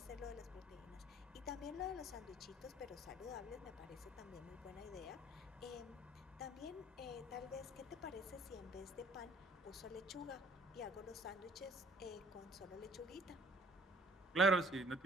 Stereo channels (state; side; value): normal; both; correlation 0.55